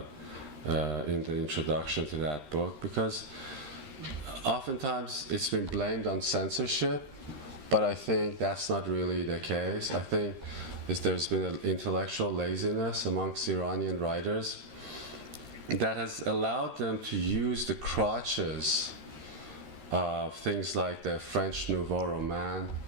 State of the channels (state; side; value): late; left; 13 ms